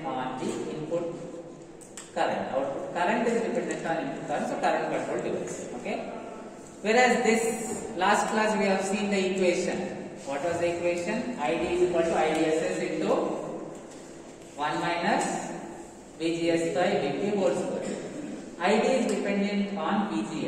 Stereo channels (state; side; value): identical; both; correlation 1.00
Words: on the input current. Output current is dependent on input current, so current control device, okay. Whereas this last class we have seen the equation. What was the equation? ID is equal to IDSS into 1 minus VGS by VP whole square. ID is dependent on